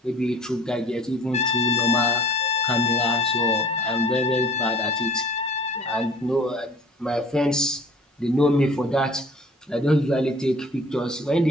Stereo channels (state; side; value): normal; both; correlation 0.49